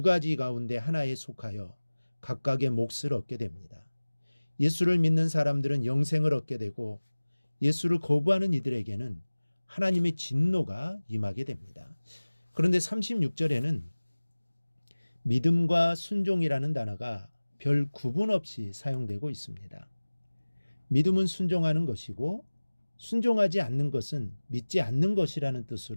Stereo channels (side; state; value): both; inverted; correlation -1.00